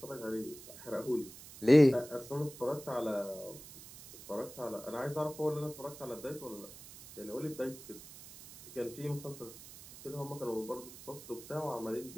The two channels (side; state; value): right; noise; hiss, 16 dB below the sound